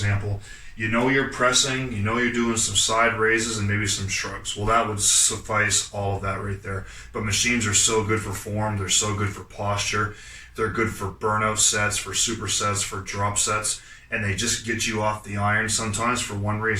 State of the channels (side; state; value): both; identical; correlation 1.00